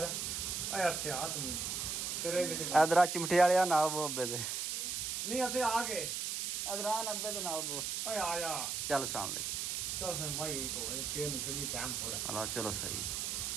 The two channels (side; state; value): right; noise; hiss, 2 dB below the sound